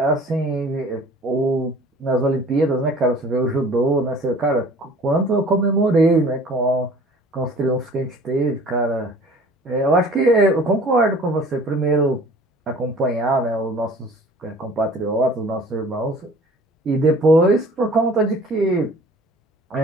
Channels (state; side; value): normal; both; correlation 0.48